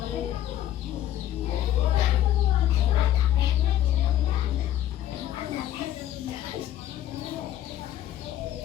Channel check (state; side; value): quieter; right; 12.3 dB